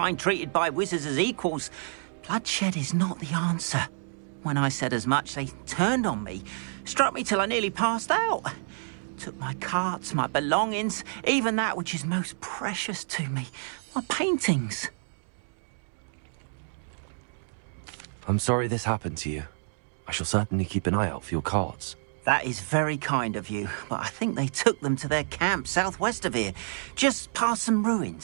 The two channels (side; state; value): left; silent; digital silence